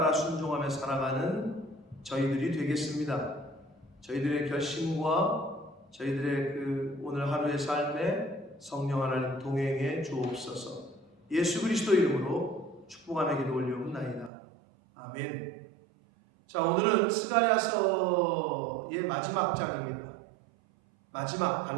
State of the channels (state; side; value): drops out; left; at 14.3 s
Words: 순종하며 살아가는 저희들이 되겠습니다. 저희들의 결심과 저희들의 그 오늘 하루의 삶에 성령 하나님 동행해 주옵소서. 예수 그리스도 이름으로 축복하며 기도 올려옵나이다. 아멘. 자, 오늘은 스가랴서의 마지막 장입니다. 마지막